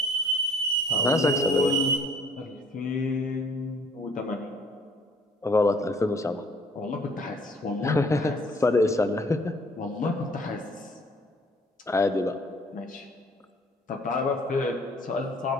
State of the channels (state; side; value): normal; both; correlation 0.57